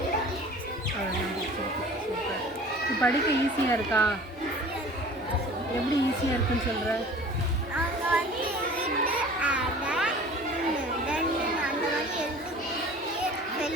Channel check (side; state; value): both; normal; correlation 0.44